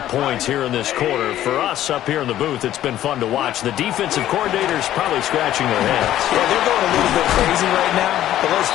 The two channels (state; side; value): quieter; right; 12.7 dB